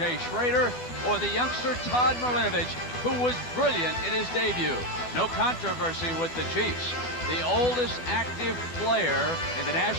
Schroeder or the youngster Todd Marinovich, who was brilliant in his debut. No controversy with the Chiefs. The oldest active player in the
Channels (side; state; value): right; late; 12 ms